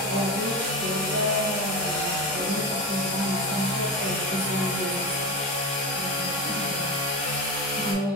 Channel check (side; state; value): both; normal; correlation 0.21